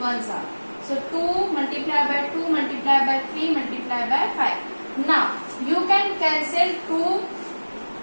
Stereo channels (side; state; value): both; inverted; correlation -1.00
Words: 1s are. So 2 multiplied by 2 multiplied by 3 multiplied by 5. Now you can cancel two